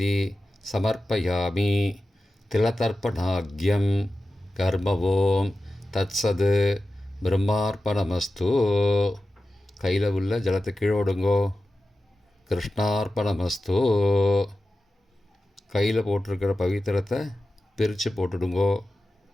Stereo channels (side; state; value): both; normal; correlation 0.93